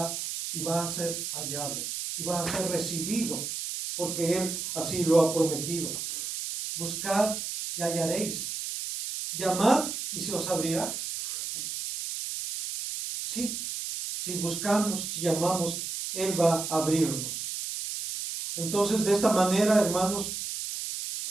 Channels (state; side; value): noise; right; hiss, 5 dB below the sound